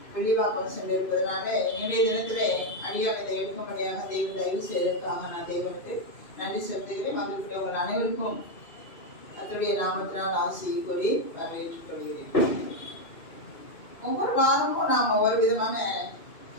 வெளிவாக்கம் சென்றிருப்பதனால இன்றைய தினத்திலே அடியானதை எடுக்கும்படியாக தேவன் தயவு செய்வதற்காக நான் தேவனுக்கு நன்றி செலுத்துகிறேன். மகிழ்ச்சி உங்கள் அனைவருக்கும் கர்த்தருடைய நாமத்தினால் ஆசியை கூறி வரவேற்றுக் கொள்கிறேன். ஒவ்வொரு வாரமும் நாம் ஒவ்வொரு விதமான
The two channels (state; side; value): late; right; 2.6 ms